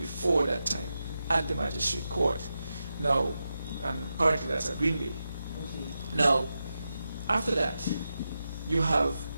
that time at the magistrate court. Now, and currently that's at Greenway. Now, after that, you have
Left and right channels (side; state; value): both; inverted; correlation -0.89